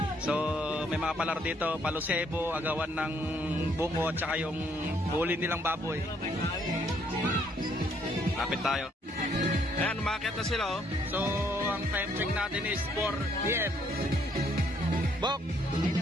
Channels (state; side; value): normal; both; correlation 0.68